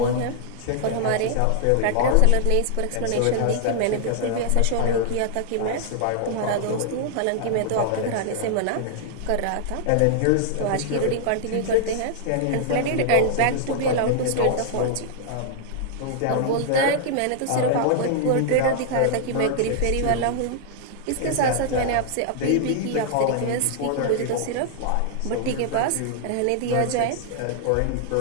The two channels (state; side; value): different; both; correlation -0.01